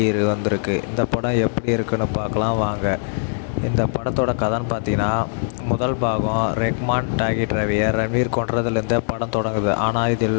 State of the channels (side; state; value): right; silent; digital silence